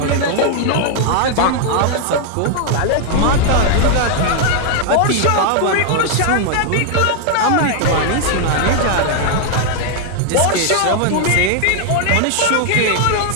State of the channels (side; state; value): both; different; correlation 0.00